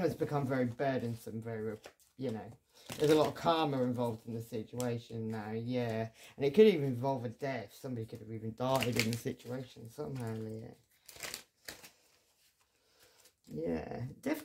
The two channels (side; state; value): both; identical; correlation 1.00